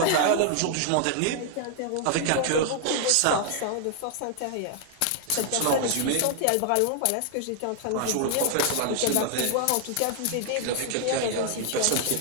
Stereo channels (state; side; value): different; both; correlation 0.00